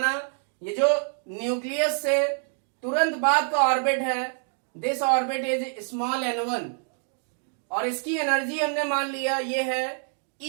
ये जो न्यूक्लियस से तुरंत बाद का ऑर्बिट है, this orbit is small n1 और इसकी एनर्जी हमने मान लिया ये है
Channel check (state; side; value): silent; left; 56 dB below the other